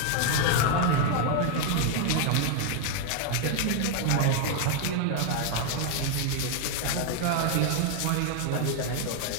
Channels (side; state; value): both; different; correlation 0.00